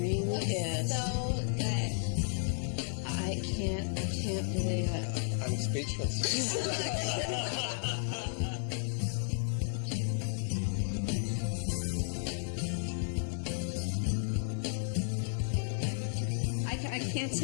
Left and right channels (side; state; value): right; silent; digital silence